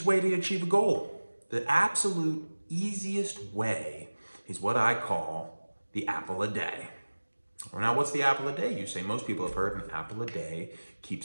way to achieve a goal? The absolute easiest way is what I call the apple a day. Now, what's the apple a day? You say most people have heard an apple a day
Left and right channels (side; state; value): both; inverted; correlation -1.00